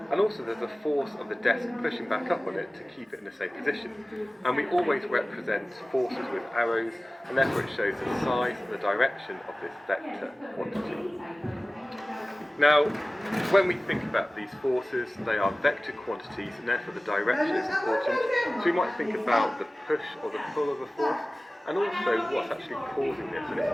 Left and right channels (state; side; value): normal; both; correlation 0.97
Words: and also there's a force of the desk pushing back up on it to keep it in the same position. And we always represent forces with arrows, and therefore it shows the size and the direction of this vector quantity. Now, when we think about these forces, they are vector quantities, and therefore the direction is important. So we might think about the push or the pull of a force, and also what's actually causing this, and it's